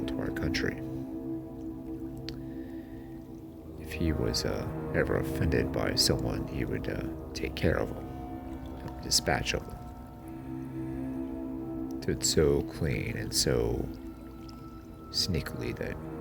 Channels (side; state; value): both; identical; correlation 1.00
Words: to our country. If he was ever offended by someone, he would take care of them, dispatch of them. Do it so clean and so sneakily that